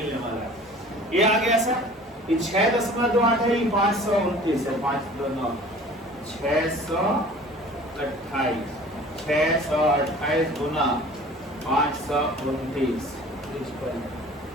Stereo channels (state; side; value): normal; both; correlation 0.46